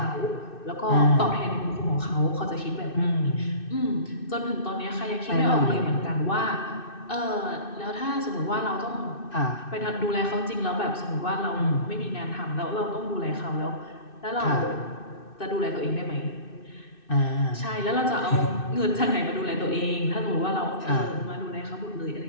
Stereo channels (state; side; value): late; right; 2.6 ms